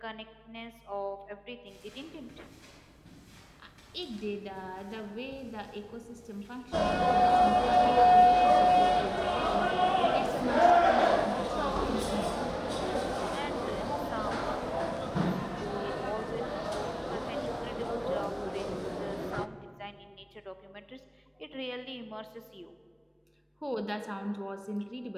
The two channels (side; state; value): both; identical; correlation 1.00